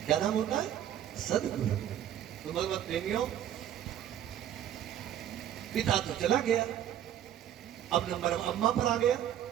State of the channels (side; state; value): left; quieter; 10.8 dB